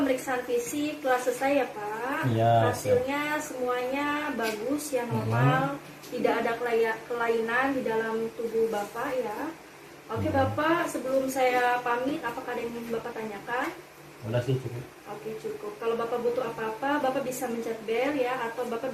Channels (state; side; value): identical; both; correlation 1.00